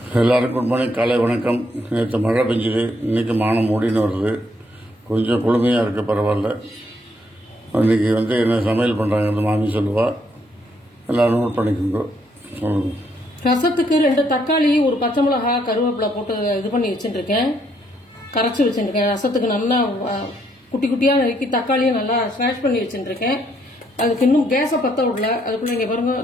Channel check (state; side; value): normal; both; correlation 0.72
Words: எல்லாருக்கும் good morning, காலை வணக்கம். நேற்று மழை பெஞ்சுது, இன்றைக்கி மானம் மூடின்னு வருது. கொஞ்சம் குளுமையாக இருக்குது, பரவாயில்ல. இன்றைக்கி என்ன சமையல் பண்ணுறாங்க மாமி சொல்லுவா, எல்லோரும் நோட் பண்ணிக்கோங்க. சொல்லுங்க. ரசத்துக்கு 2 தக்காளி, ஒரு பச்சை மிளகா, கருவேப்பிலை போட்டு இது பண்ணி வச்சுட்டுருக்கேன், கரைச்சி வச்சுட்டுருக்கேன். ரசத்துக்கு நல்லா குட்டி குட்டியாக நறுக்கி தக்காளியும் நல்லா ஸ்மாஷ் பண்ணி வச்சுட்டுருக்கேன். அதுக்கு இன்னும் கேஸை பற்ற விடல. அதுக்குள்ளே இங்கே பாருங்க,